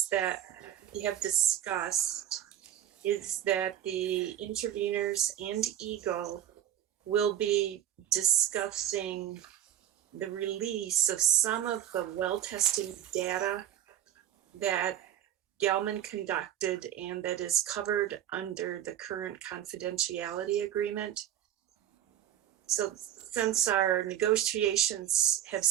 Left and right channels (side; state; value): left; quieter; 11.4 dB